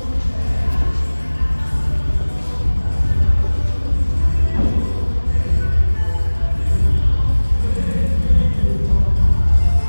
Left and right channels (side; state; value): both; inverted; correlation -1.00